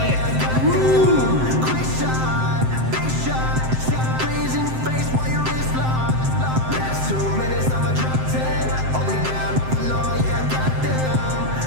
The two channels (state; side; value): late; left; 7.7 ms